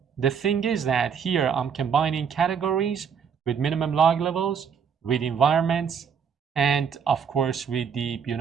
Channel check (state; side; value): quieter; left; 7.0 dB